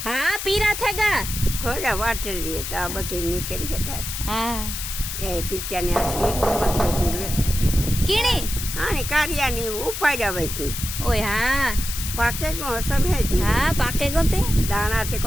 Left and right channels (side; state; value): left; noise; hiss, 6 dB below the sound